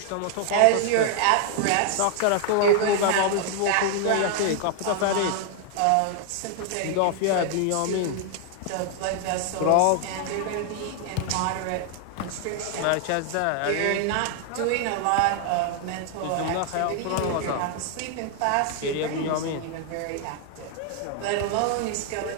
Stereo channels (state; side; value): different; both; correlation 0.00